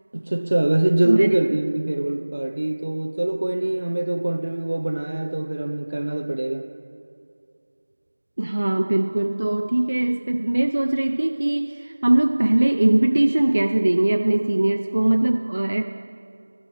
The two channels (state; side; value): inverted; both; correlation -1.00